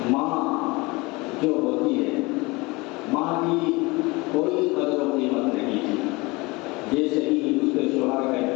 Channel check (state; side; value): quieter; right; 24.3 dB